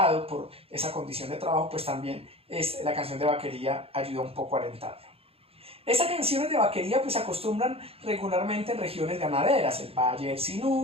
por esa condición de trabajo, pues también la canción de vaquería ayuda un poco a alentarlo. Estas canciones de vaquería pues se acostumbran regularmente en regiones ganaderas, el Valle del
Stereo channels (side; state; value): left; late; 0.28 ms